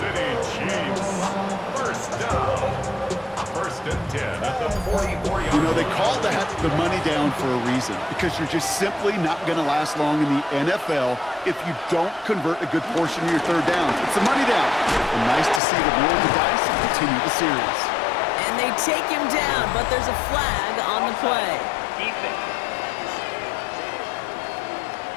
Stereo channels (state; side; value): drops out; right; at 15.6 s